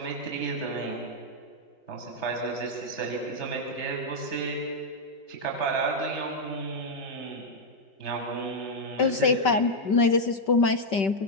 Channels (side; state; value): right; late; 5.2 ms